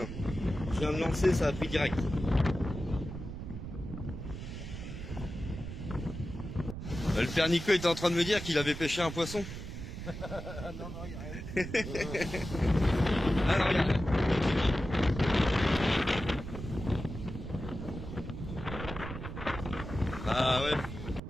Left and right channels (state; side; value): noise; right; rumble, 8 dB below the sound